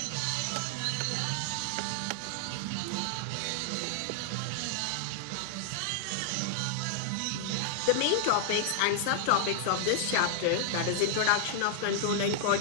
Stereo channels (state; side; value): different; both; correlation -0.01